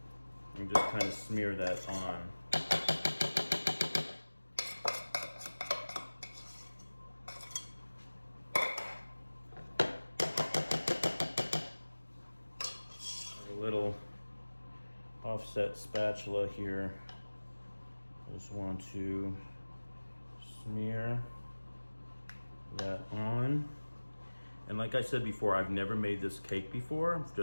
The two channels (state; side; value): inverted; both; correlation -1.00